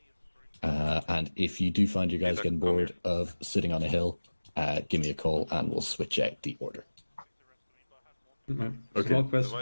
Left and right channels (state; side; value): inverted; both; correlation -1.00